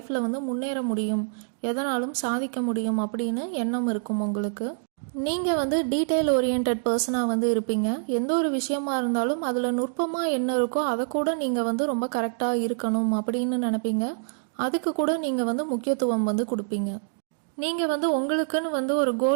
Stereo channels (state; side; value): silent; left; digital silence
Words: வந்து முன்னேற முடியும், எதனாலும் சாதிக்க முடியும் அப்படின்னு எண்ணம் இருக்கும் உங்களுக்கு. நீங்கள் வந்து டீட்டெயில் ஓரியன்ட் பர்சனாக வந்து இருப்பீங்க. எந்த ஒரு விஷயமா இருந்தாலும் அதில் நுட்பமாக என்ன இருக்கோ அதை கூட நீங்கள் வந்து ரொம்ப கரெக்டாக இருக்கணும் அப்படின்னு நினைப்பீங்க. அதுக்கு கூட நீங்கள் வந்து முக்கியத்துவம் வந்து கொடுப்பீங்க. நீங்கள் வந்து உங்களுக்குன்னு வந்து ஒரு